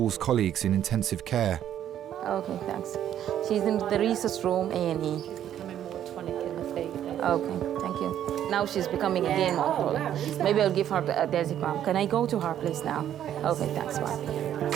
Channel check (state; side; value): quieter; left; 10.7 dB